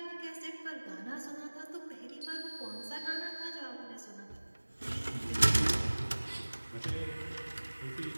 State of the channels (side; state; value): both; inverted; correlation -1.00